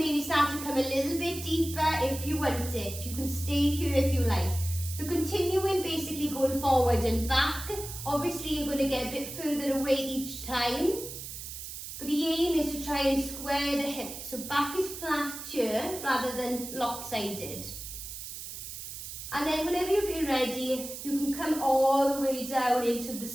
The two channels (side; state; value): right; noise; hiss, 9 dB below the sound